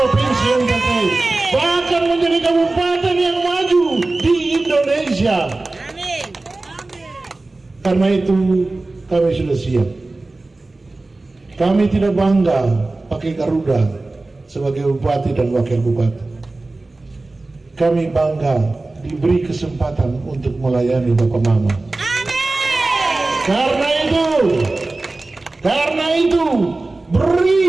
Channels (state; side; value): quieter; left; 3.2 dB